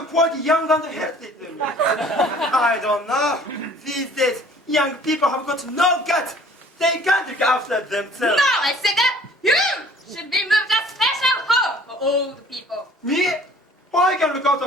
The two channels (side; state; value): both; normal; correlation 0.53